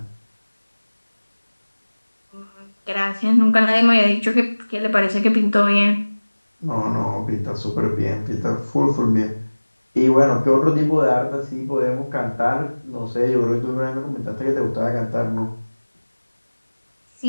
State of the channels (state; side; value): inverted; both; correlation -1.00